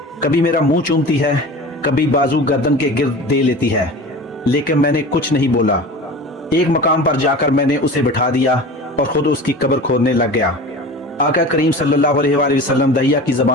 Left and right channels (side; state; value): both; normal; correlation 0.35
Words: कभी मेरा मुंह चूमती है, कभी बाजू गर्दन के गिर्द दे लेती है, लेकिन मैंने कुछ नहीं बोला। एक मकाम पर जाकर मैंने उसे बिठा दिया और खुद उसकी कब्र खोदने लग गया। आका करीम सल्लल्लाहु अलैहि वसल्लम दहिया की